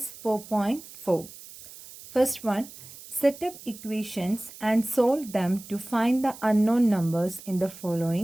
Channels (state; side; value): noise; right; hiss, 17 dB below the sound